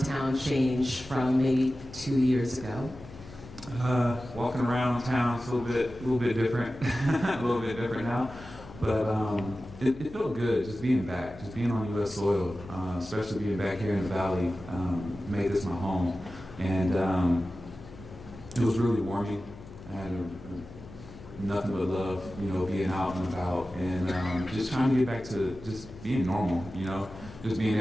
town change from maybe 2 years ago? Walking around town is a little bit different, a little bit different now. But it felt good just being back, just being on U.S. soil, especially being back here in the Valley, made this my home. And it was really warming. I had nothing but love, being out and about, and just trying to get back to just being normal, just being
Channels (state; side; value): noise; left; hum, 17 dB below the sound